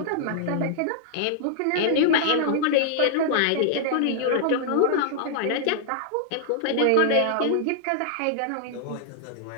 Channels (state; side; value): different; both; correlation -0.01